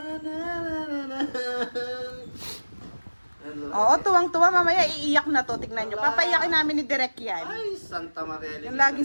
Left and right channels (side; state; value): both; inverted; correlation -1.00